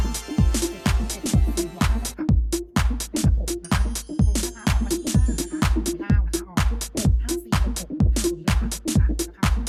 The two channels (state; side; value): identical; both; correlation 1.00